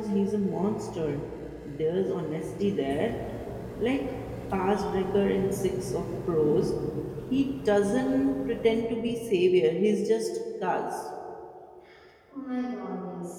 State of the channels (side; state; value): both; identical; correlation 1.00